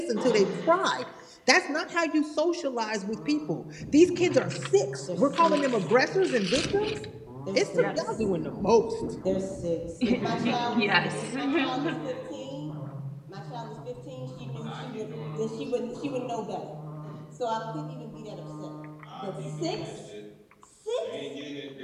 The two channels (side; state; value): both; identical; correlation 1.00